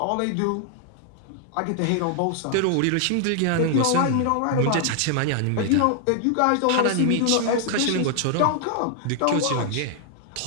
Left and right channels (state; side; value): different; both; correlation 0.00